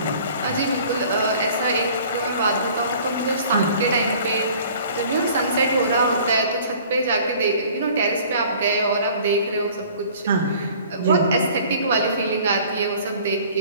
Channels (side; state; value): both; inverted; correlation -0.50